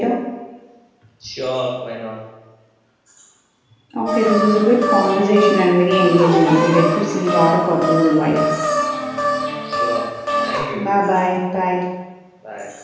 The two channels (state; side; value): identical; both; correlation 1.00